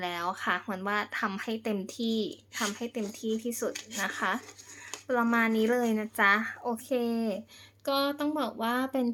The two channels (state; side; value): identical; both; correlation 1.00